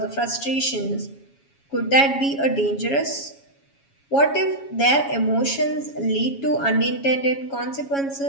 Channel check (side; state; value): right; late; 7.2 ms